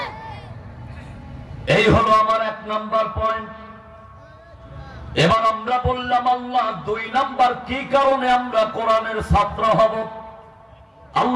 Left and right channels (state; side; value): identical; both; correlation 1.00